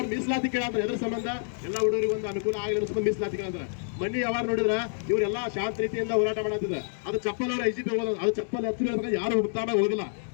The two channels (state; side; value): silent; right; digital silence